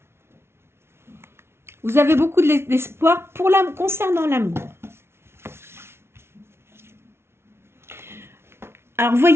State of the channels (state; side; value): late; left; 0.12 ms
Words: Vous avez beaucoup d'espoir concernant l'amour. Alors, vous